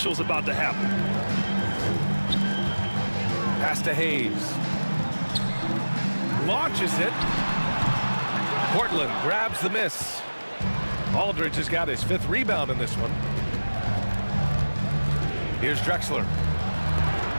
is about to happen. Pass to Hayes. Launches it. Portland grabs the miss. Aldridge has got his 5th rebound in this one. Here's Drexler.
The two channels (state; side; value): inverted; both; correlation -1.00